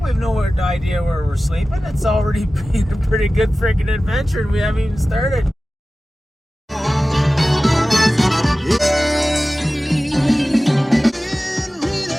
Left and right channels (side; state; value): both; normal; correlation 0.96